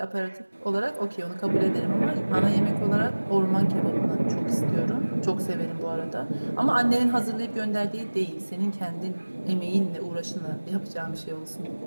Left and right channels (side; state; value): both; inverted; correlation -1.00